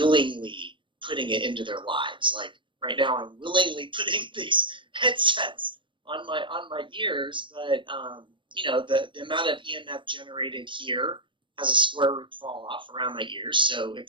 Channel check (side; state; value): left; late; 0.24 ms